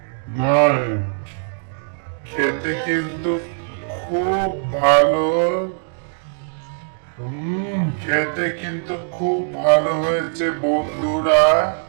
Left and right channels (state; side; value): silent; left; digital silence